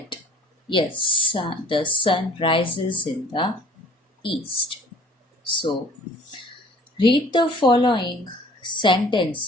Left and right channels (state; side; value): normal; both; correlation 0.53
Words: yes, the sun rises in the east. So read the following